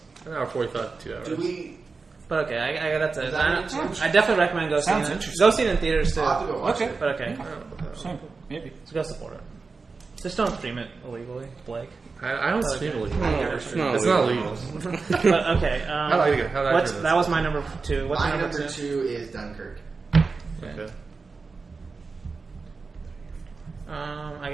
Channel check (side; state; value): left; quieter; 4.4 dB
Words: An hour 45 to 2 hours. Do we? But okay, I that's it. Is that what I definitely recommend go seeing Sounds it. interesting. Go see it in theaters too. I'll have to go watch Okay. it. But okay, Same. Maybe. so go support it. Just don't stream it illegally, Blake. I don't stream illegal. it's not It's not illegal. legal. But okay, How do I turn this? that was my number 2. What's My your number number 2? 2 is Dunkirk. Okay. I